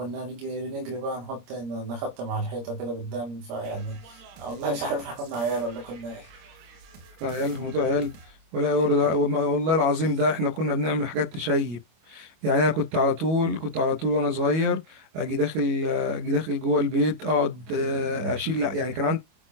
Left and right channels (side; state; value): left; late; 25 ms